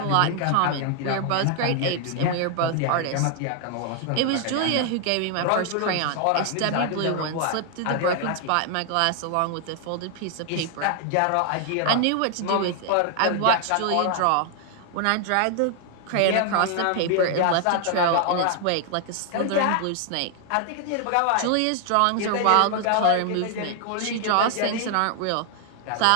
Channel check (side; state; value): both; different; correlation 0.00